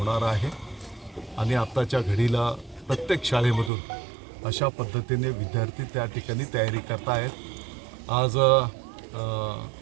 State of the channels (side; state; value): left; drops out; at 3.7 s